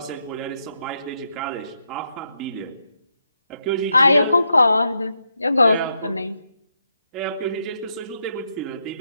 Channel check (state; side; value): inverted; both; correlation -0.81